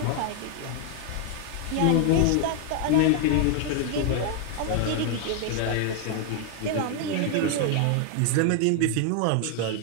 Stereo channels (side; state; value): both; different; correlation 0.00